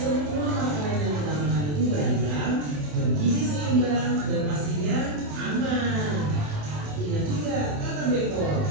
makanan yang kita makan itu beragam, bergizi seimbang, dan pastinya aman. Ingat juga kata Beko,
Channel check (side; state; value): left; late; 27 ms